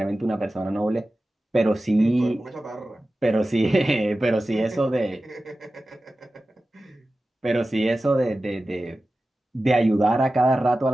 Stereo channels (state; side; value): normal; both; correlation 0.95